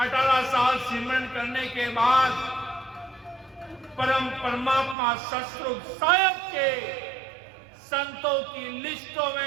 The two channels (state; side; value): drops out; left; at 5.0 s